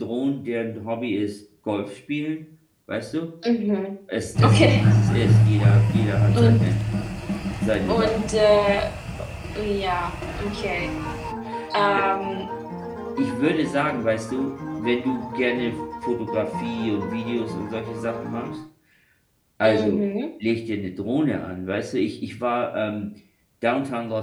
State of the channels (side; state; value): both; identical; correlation 1.00